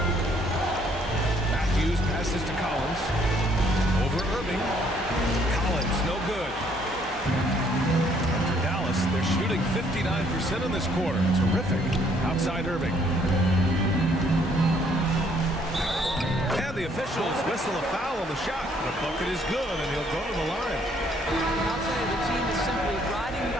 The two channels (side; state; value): both; normal; correlation 0.65